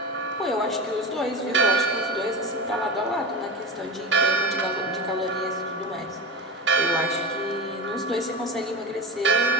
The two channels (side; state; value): both; normal; correlation 0.25